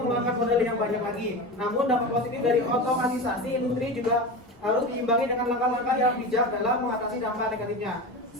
modal yang banyak lagi. Namun dampak positif dari otomatisasi industri juga harus diimbangi dengan langkah-langkah yang bijak dalam mengatasi dampak negatifnya,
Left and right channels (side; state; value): both; normal; correlation 0.26